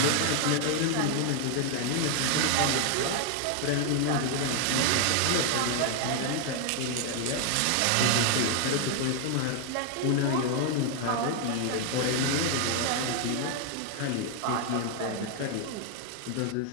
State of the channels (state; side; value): different; both; correlation 0.00